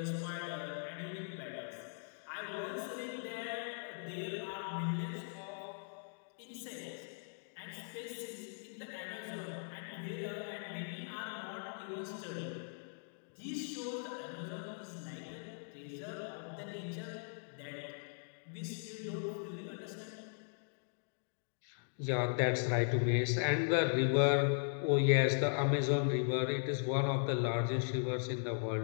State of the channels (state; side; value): silent; right; digital silence